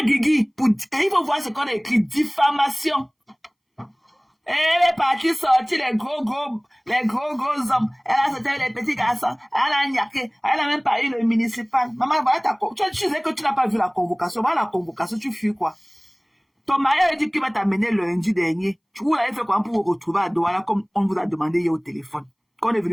Guigui. Il faut voir ce qu'on a écrit. Diffamation. Elle est partie sortir les gros hommes. Elle a sorti les petits garçons. Elle a niaqué. Elle a même pas eu le municipal. Maman, voilà ta convocation. Tu sais que tu n'as pas vu la convocation. Voilà la convocation, tu fuis quoi. Ton mari a dit qu'il va t'amener lundi dernier. Tu vous l'avez fait quoi pour vous retrouver à Douala comme on vous a demandé hier au téléphone. Quand on est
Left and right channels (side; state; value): both; identical; correlation 1.00